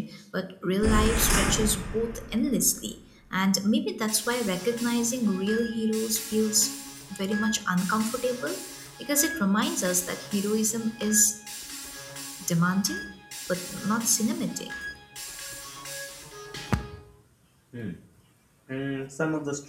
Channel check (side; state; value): both; identical; correlation 1.00